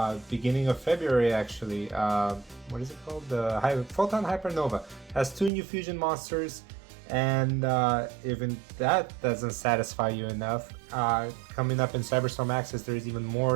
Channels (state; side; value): drops out; left; at 5.5 s